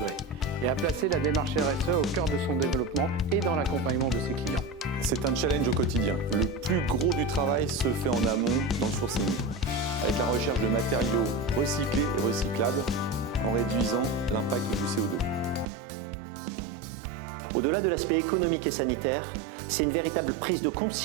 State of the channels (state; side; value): drops out; left; at 15.7 s